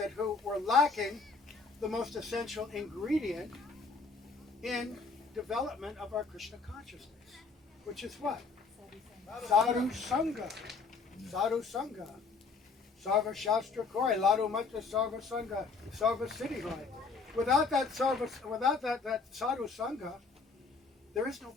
who were lacking the most essential ingredient in development of our Krishna consciousness, which is what? Sadhu Sangha. Sadhu Sangha. Sarva Shastra Koi, Ladu Matra Sarva Sangha, Sarva Siddhi Hoy. Without that Sadhu Sangha, there is no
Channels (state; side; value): quieter; right; 4.5 dB